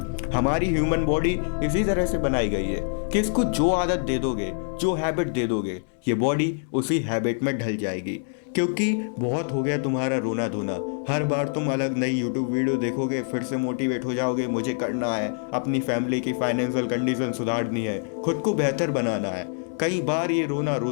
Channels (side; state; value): right; silent; digital silence